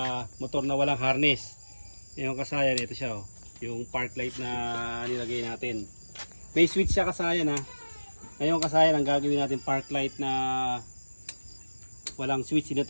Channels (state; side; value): inverted; both; correlation -1.00